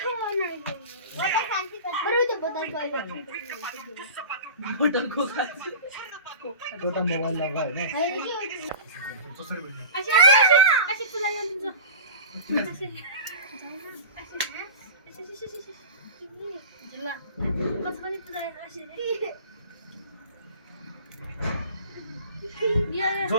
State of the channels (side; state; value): both; inverted; correlation -0.36